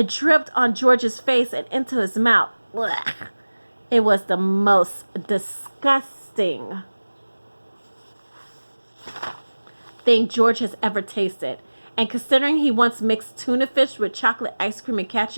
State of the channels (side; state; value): both; inverted; correlation -1.00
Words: dripped on George's face and into his mouth. Blech. It was the most disgusting thing George has ever tasted. And considering he once mixed tuna fish with chocolate ice cream and